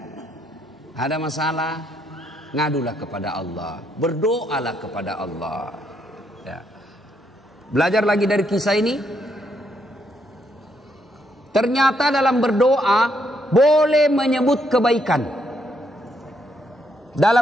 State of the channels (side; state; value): both; normal; correlation 0.75